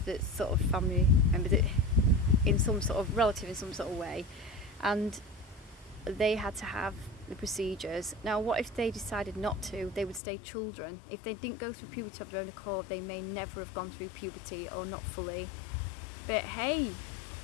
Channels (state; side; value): drops out; right; at 10.2 s